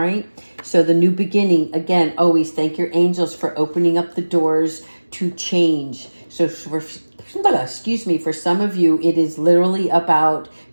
So the new beginning, again, always thank your angels for opening up the doors to change. So for some of you, it is literally about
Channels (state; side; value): inverted; both; correlation -1.00